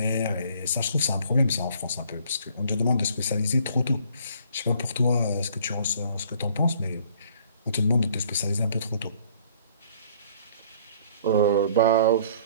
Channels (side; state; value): both; inverted; correlation -0.57